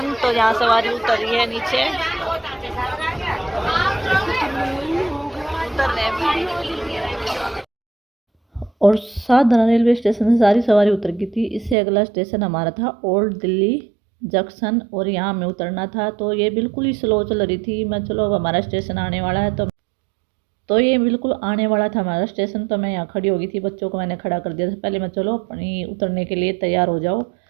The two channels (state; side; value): drops out; left; at 11.8 s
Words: तो यहाँ सवारी उतर रही है नीचे, और सादरा रेलवे स्टेशन से सारी सवारी उतर गई थी। इससे अगला स्टेशन हमारा था ओल्ड दिल्ली जंक्शन और यहाँ हमें उतरना था। तो ये बिल्कुल ही स्लो चल रही थी। मैं चलो अब हमारा स्टेशन आने वाला है। तो तो ये बिल्कुल आने वाला था हमारा स्टेशन, तो मैं यहाँ खड़ी हो गई थी, बच्चों को मैंने खड़ा कर दिया था पहले, मैं चलो अपनी उतरने के लिए तैयार हो जाओ।